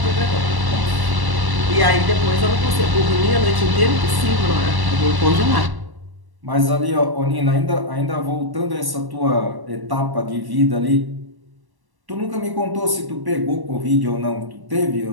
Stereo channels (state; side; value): late; left; 1.1 ms